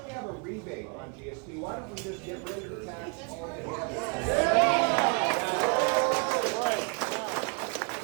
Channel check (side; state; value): left; quieter; 35.6 dB